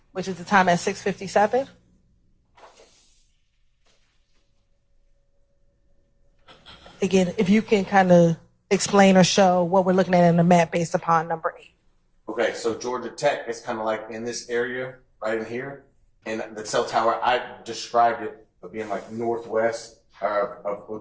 which is the time at 6:57. Again, if you can kind of explain or show what we're looking at in the map based upon number 8. Okay, so Georgia Tech is kind of like in this area, right in here. And the cell tower, I described it of being like northwest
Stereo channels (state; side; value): identical; both; correlation 1.00